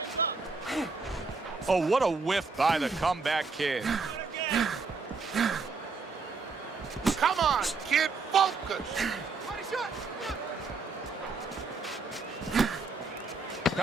Oh, what a whiff by the Comeback Kid. Come on, kid, focus.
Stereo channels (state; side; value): quieter; left; 4.3 dB